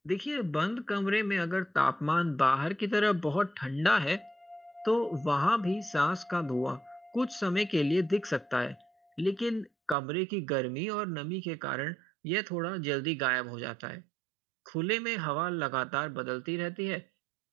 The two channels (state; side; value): drops out; left; at 10.0 s